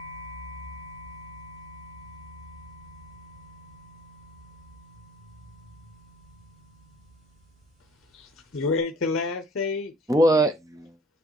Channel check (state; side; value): normal; both; correlation 0.53